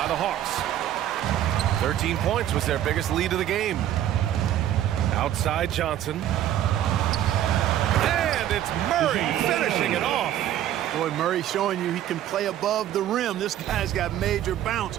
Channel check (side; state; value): left; quieter; 11.8 dB